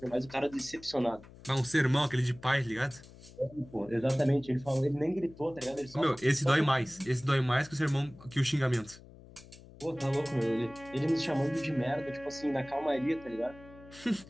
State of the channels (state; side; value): noise; left; hum, 20 dB below the sound